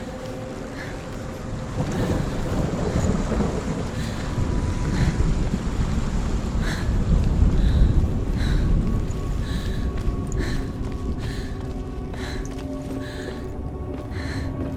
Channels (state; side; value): identical; both; correlation 1.00